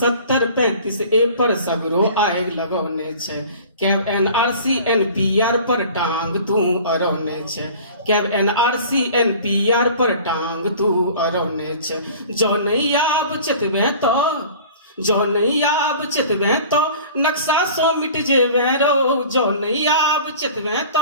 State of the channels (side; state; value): both; inverted; correlation -0.44